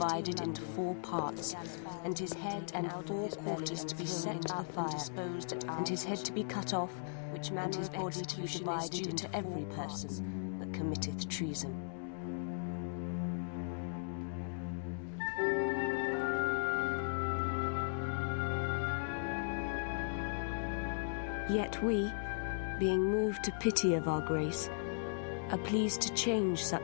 into 4 parts, and his head and 4 quarters to be set up and disposed, and his head to be cut off, which man his body to be divided into every person that committeth treason. Yet we, being moved to pity of our grace, are pleased to change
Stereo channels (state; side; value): silent; right; digital silence